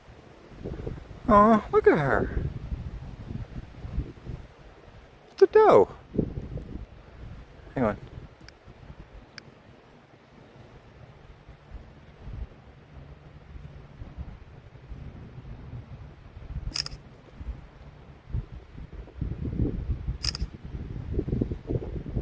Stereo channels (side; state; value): both; identical; correlation 1.00